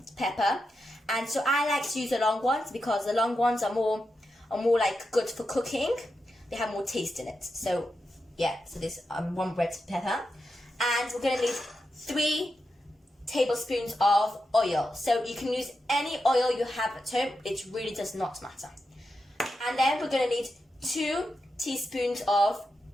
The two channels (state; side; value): normal; both; correlation 0.88